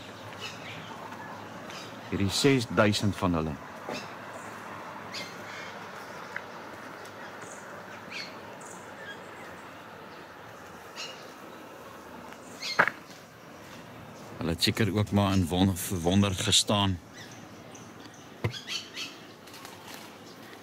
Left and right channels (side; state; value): both; identical; correlation 1.00